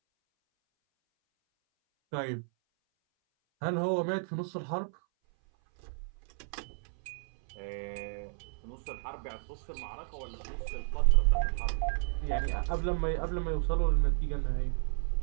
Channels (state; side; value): silent; left; 56 dB below the other